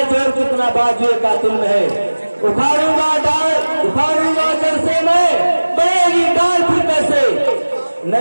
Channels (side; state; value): both; inverted; correlation -1.00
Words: जोर कितना बाजुए कातिल में है। उखाड़ूंगा डाल, उखाड़ूंगा जड़ से मैं, बढ़ेगी डाल फिर कैसे, न